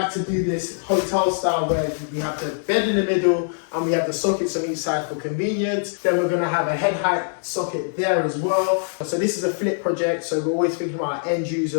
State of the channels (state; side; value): silent; right; digital silence